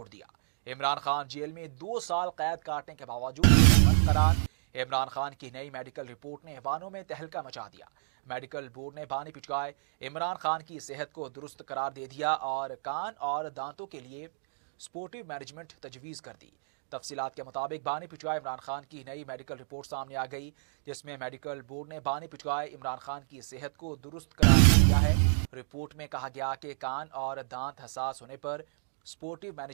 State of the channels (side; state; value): left; silent; digital silence